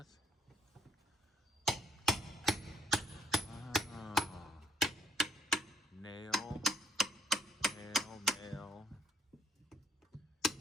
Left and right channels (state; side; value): normal; both; correlation 0.65